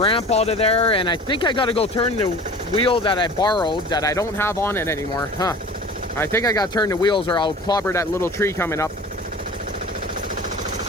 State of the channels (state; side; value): normal; both; correlation 0.41